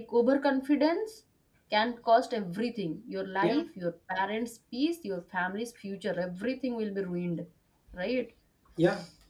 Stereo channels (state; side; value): identical; both; correlation 1.00